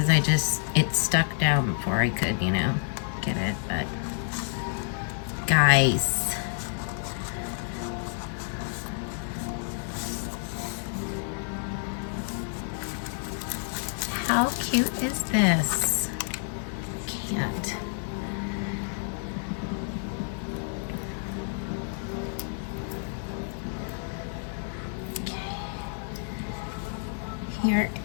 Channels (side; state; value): right; silent; digital silence